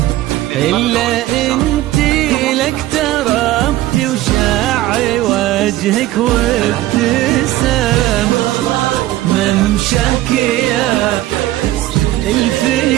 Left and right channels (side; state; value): left; quieter; 15.6 dB